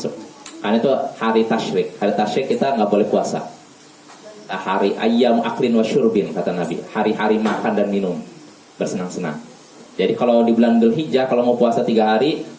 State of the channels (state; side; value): identical; both; correlation 1.00